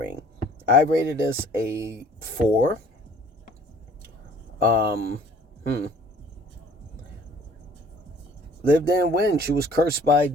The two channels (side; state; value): both; normal; correlation 0.53